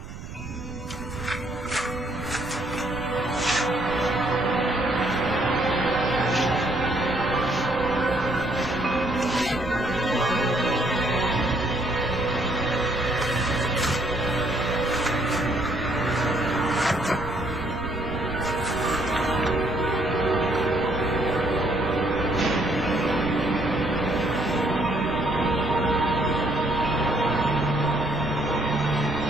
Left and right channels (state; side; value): noise; right; rumble, 12 dB below the sound